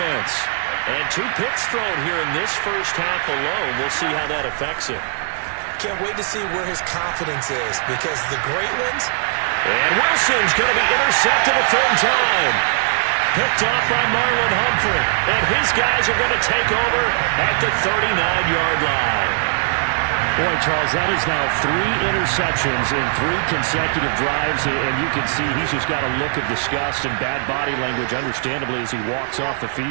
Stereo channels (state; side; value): silent; left; digital silence